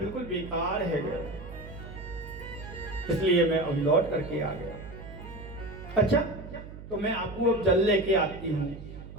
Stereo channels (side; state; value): right; noise; hum, 13 dB below the sound